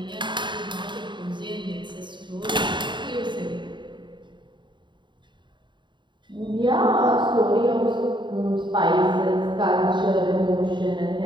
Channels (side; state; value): left; late; 0.23 ms